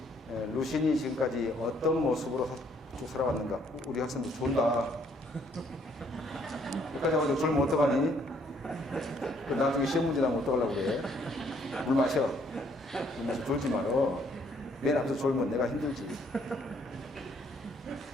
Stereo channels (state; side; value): normal; both; correlation 0.66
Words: 루신이 지금까지 어떤 모습으로 쭉 살아왔는가. 우리 학생도 졸다. 여기까지 와가지고 졸면 어떡하니? 나중에 시험 문제 나면 어떡하려고 그래? 물 마셔. 물 마셔. 졸지 말어. 맨 앞에서 졸면 내가 힘들지.